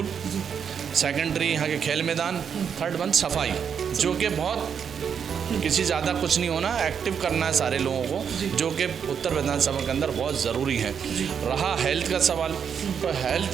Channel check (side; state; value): left; quieter; 7.3 dB